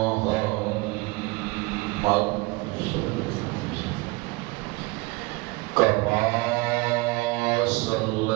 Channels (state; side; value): quieter; left; 24.1 dB